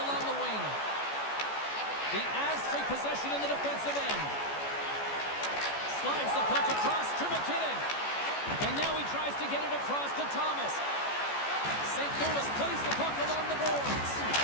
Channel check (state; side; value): late; right; 14 ms